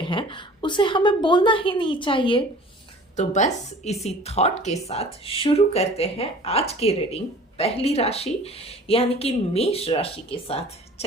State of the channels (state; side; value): normal; both; correlation 0.45